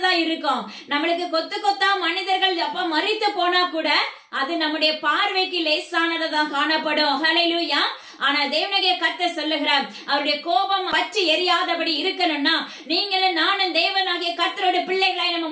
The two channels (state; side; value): identical; both; correlation 1.00